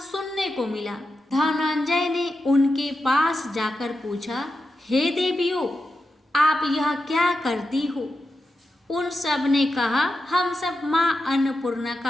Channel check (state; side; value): normal; both; correlation 0.89